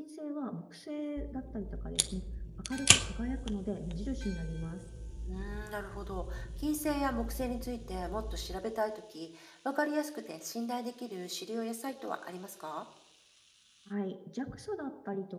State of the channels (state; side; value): identical; both; correlation 1.00